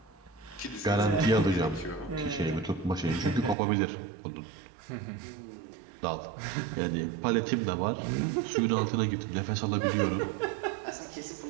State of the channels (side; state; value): left; drops out; at 3.6 s